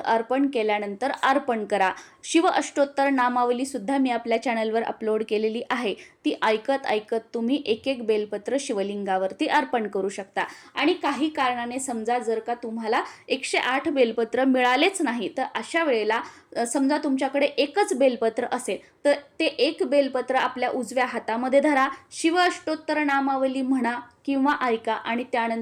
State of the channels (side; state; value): both; identical; correlation 1.00